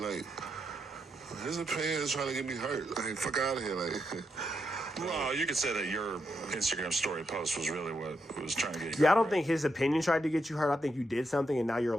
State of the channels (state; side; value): normal; both; correlation 0.82